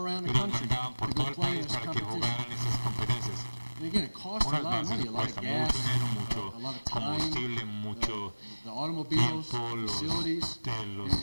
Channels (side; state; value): both; inverted; correlation -1.00